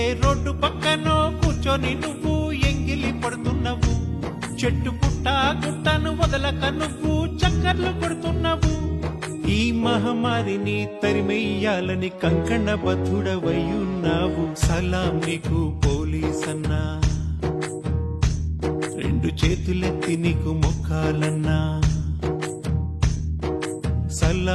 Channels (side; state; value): both; identical; correlation 1.00